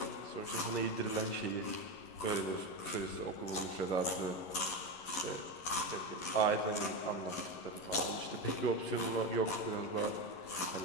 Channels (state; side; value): late; right; 11 ms